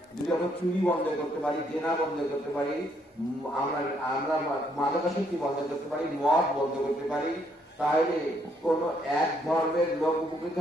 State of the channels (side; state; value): both; normal; correlation 0.71